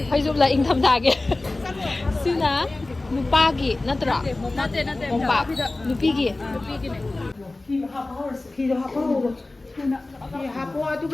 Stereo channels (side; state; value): right; quieter; 3.0 dB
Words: ꯐꯩꯖꯨꯞꯂ ꯏꯪꯊꯝꯊꯥꯒꯤ ꯁꯤꯅ ꯅꯨꯄꯥꯒꯤ ꯅꯠꯇ꯭ꯔꯣ ꯅꯠꯇꯦ ꯃꯣꯝꯄꯥꯛ ꯅꯨꯄꯤꯒꯤ ꯐꯤꯗꯣ ꯍꯥꯞꯄꯍꯧꯔꯣ ꯐꯤ ꯍꯥꯞꯄꯣ